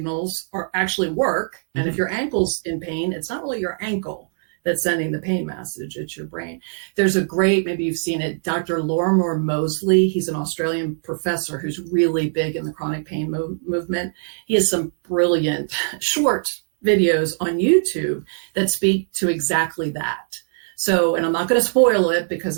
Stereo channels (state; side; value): silent; left; digital silence